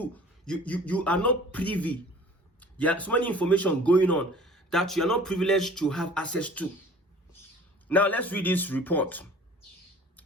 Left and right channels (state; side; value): normal; both; correlation 0.47